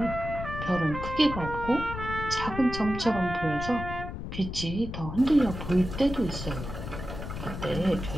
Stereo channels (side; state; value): left; noise; rumble, 7 dB below the sound